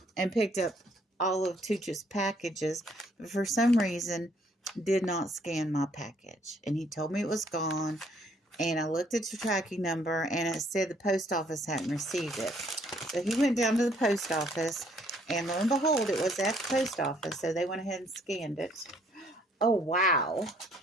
picked up all of Tooch's packages, but for some reason did not scan my package, and he told me it was gone. And I looked at the tracking number, and it said the post office hadn't received it. So he went down to the post office, and lo and behold, it was at the post office. So they went ahead and scanned it. Oh, wow.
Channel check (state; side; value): normal; both; correlation 0.65